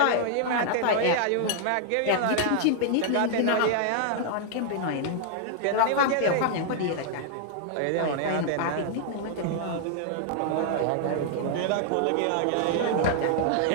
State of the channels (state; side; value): different; both; correlation 0.00